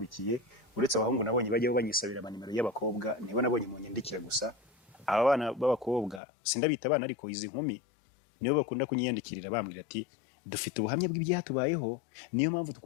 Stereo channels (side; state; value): right; drops out; at 6.2 s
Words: uretse abahungu nabonye bajyaho banyisabira amanimero y'abakobwa, nibo nabonye mu nyandikira gusa. Aba bana b'abakobwa sindabita abana, ariko izi nkumi nibo bakunda kunyiyandikirira bambwira ati dufite ubuhamya bw'ibyatubayeho, niyo mpamvu